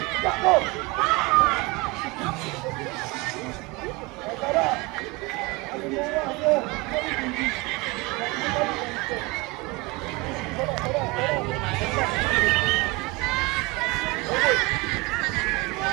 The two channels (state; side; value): quieter; left; 24.6 dB